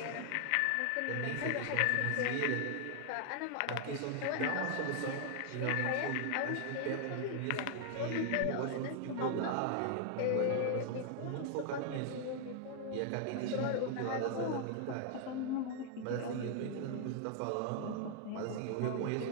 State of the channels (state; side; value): different; both; correlation 0.00